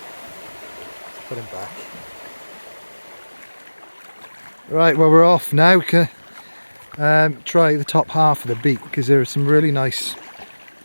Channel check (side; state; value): both; inverted; correlation -1.00